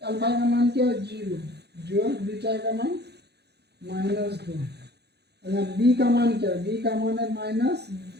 अल्फा का मान क्या है 0 जोड़ बीटा का मान -2। बी का मान क्या है, बी का मान है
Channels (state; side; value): late; left; 0.48 ms